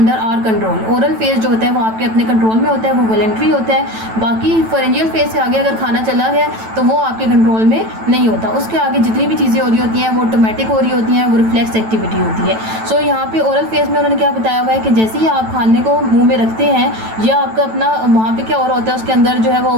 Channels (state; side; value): late; left; 9.1 ms